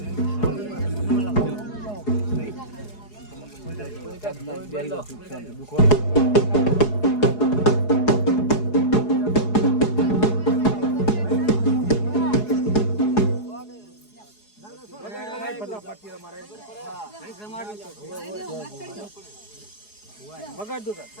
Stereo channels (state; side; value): late; right; 4.8 ms